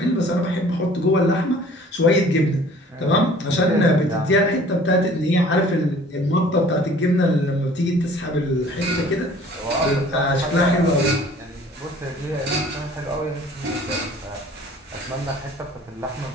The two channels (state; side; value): normal; both; correlation 0.51